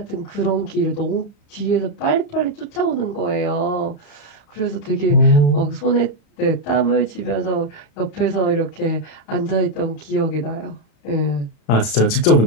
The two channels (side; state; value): right; late; 35 ms